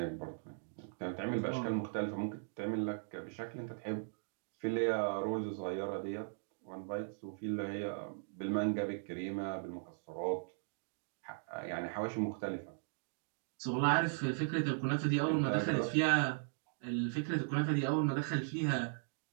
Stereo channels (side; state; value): left; silent; digital silence